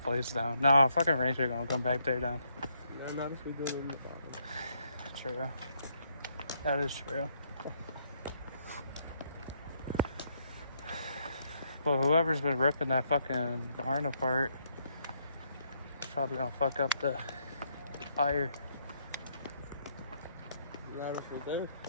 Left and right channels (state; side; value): inverted; both; correlation -0.73